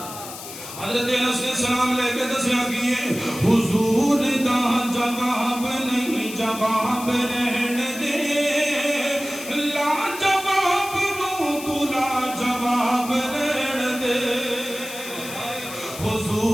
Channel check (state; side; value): noise; left; hiss, 12 dB below the sound